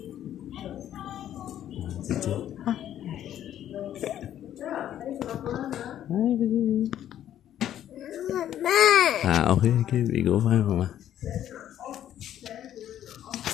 chị ok cái bị gỗ phải không mà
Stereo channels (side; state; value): right; quieter; 11.2 dB